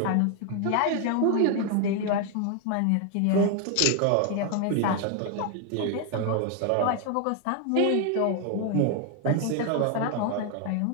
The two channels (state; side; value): different; both; correlation 0.01